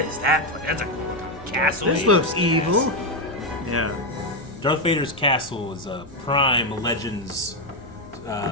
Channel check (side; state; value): both; normal; correlation 0.07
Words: is that place? That's a castle. This looks evil. Yeah. Darth Vader's castle is a prime Legends